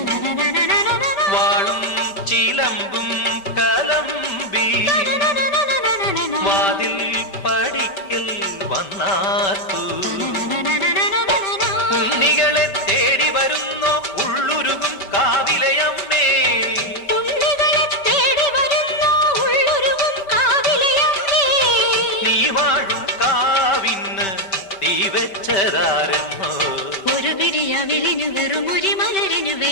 വാളും ചിലമ്പും കലമ്പി വാതിൽ പടിക്കൽ വന്നാർത്തു ഉണ്ണികളെ തേടി വരുന്നോ ഉള്ളുരുകും കാവിലയമ്മേ നീ വാഴും കാവിന്ന് തീ വെച്ചതാരെന്നോ ഒരു വിരിയവിലിനു വെറുമൊരു മലരിനു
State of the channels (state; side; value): late; right; 5.2 ms